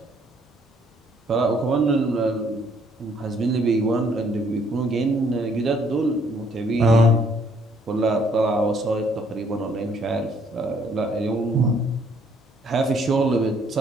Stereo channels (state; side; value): normal; both; correlation 0.65